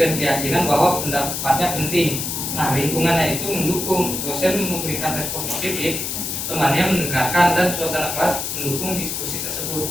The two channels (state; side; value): noise; left; hiss, 3 dB below the sound